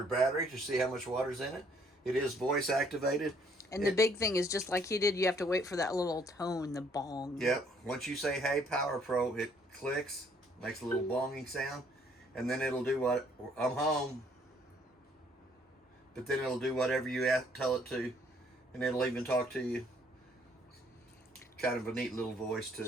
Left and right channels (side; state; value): both; normal; correlation 0.64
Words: battery to see how much water's in it. It is voice activated. And the big thing is, just like he did, you have to wait for that little tone, the bong. Yep. Once you say, "Hey, Power Pro," it clicks, makes a little bonging sound, and then it'll do what? "I'm home." But then it'll do whatever you tell it to, and it'll even talk to you. Kind of a neat little voice